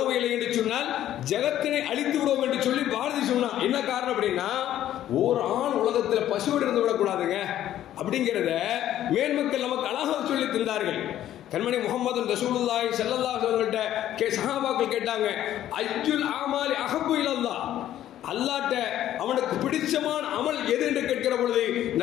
இல்லை என்று சொன்னால் ஜகத்தினை அழித்து விடுவோம் என்று சொல்லி பாரதி சொன்னா. என்ன காரணம் அப்படின்னா, ஒரு ஆண் உலகத்தில் பசுவோடு இருந்து விடக்கூடாதுங்க அப்படிங்கிறத மேன்மக்கள் நமக்கு அழகாக சொல்லி தந்தார்கள். கண்மணி முஹம்மது ரசூலுல்லாஹி ஸல்லல்லாஹு அலைஹி வஸல்லம் சஹாபாக்கள் கேட்டாங்க, அய்யுல் அமாலி அஹப்பு இலல்லாஹ், அல்லாஹ்ட்ட அவனுக்கு பிடிச்சமான அமல் எது என்று கேட்கிற பொழுது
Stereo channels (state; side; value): quieter; right; 12.2 dB